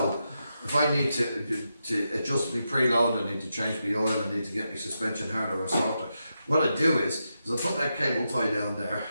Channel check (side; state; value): both; inverted; correlation -0.86